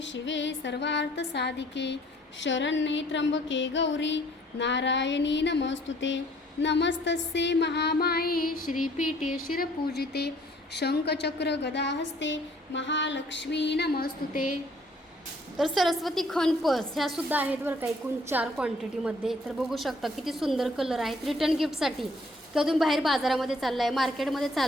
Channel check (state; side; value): normal; both; correlation 0.60